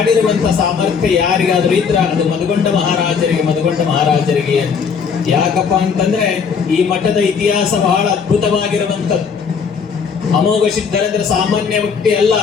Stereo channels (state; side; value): quieter; right; 6.1 dB